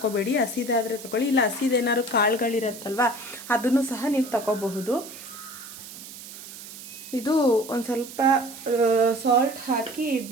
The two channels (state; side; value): noise; right; hiss, 14 dB below the sound